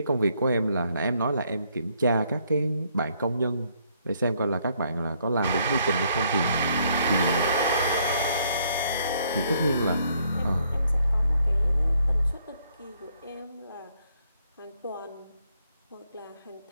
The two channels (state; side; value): inverted; both; correlation -0.70